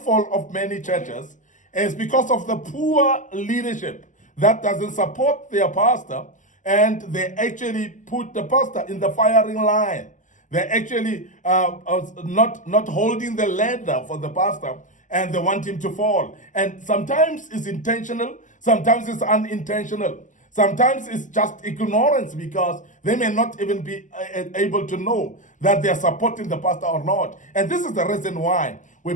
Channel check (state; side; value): late; right; 0.37 ms